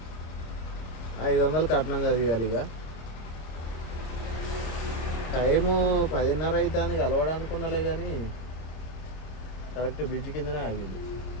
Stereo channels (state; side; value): late; right; 26 ms